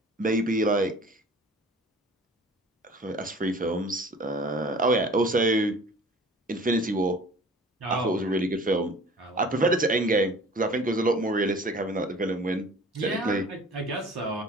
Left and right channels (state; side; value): normal; both; correlation 0.46